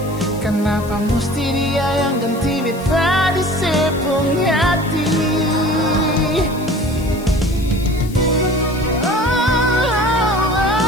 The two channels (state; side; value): noise; left; hiss, 19 dB below the sound